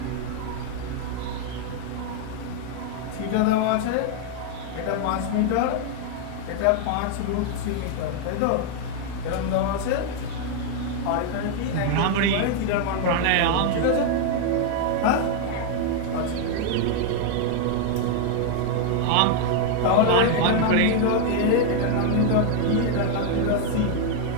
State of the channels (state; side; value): different; both; correlation 0.00